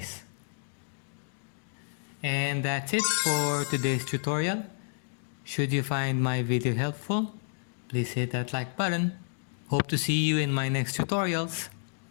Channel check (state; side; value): silent; right; digital silence